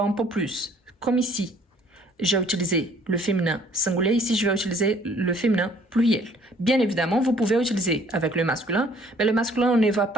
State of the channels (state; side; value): normal; both; correlation 0.58